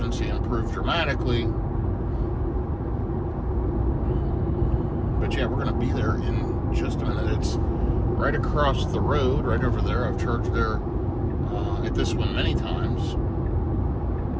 improved dramatically. But yeah, we're going to be there in just a minute. It's right across the road, right over there. I've charged there at this one many times.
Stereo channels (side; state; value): both; identical; correlation 1.00